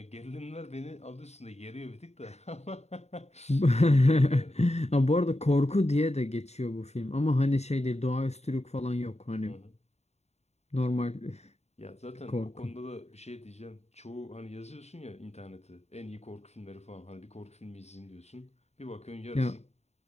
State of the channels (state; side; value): late; right; 0.32 ms